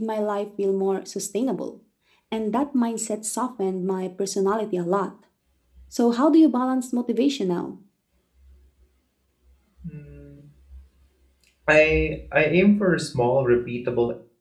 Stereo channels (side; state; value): both; identical; correlation 1.00